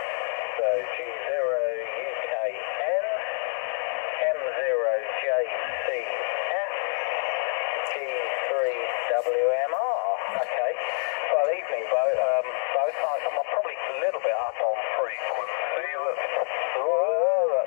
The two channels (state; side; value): silent; right; digital silence